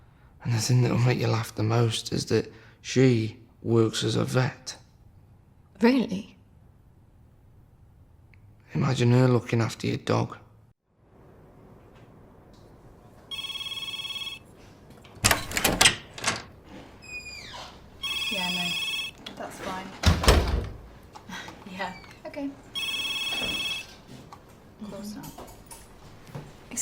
And the thing that'll make you laugh the most is that she works as a vet. Really? Imagine her looking after your dog. Yeah, no, that's fine. Yeah, okay. Of course not.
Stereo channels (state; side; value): identical; both; correlation 1.00